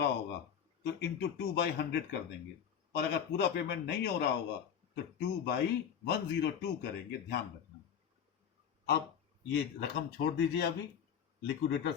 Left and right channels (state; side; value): quieter; right; 8.2 dB